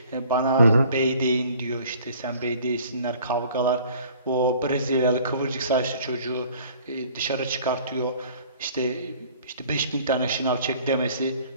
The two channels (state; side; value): inverted; both; correlation -0.53